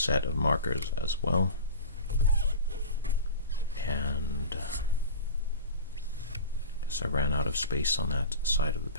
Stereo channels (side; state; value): both; inverted; correlation -0.33